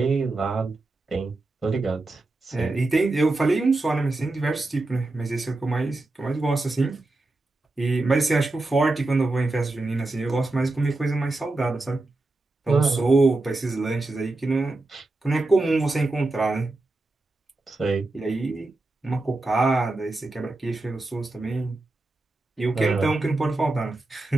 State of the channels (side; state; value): left; quieter; 3.0 dB